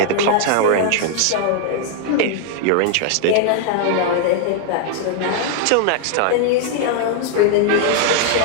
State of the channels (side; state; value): both; different; correlation 0.00